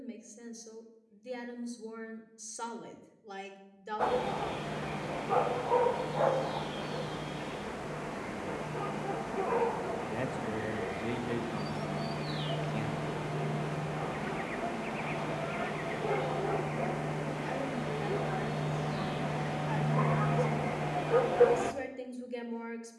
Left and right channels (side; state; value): both; identical; correlation 1.00